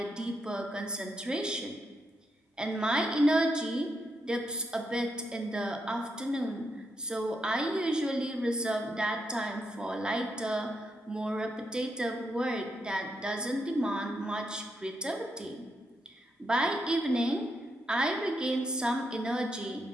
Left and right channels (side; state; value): both; normal; correlation 0.81